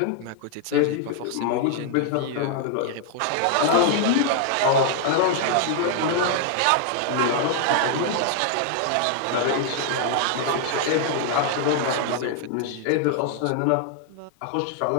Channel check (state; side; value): different; both; correlation 0.00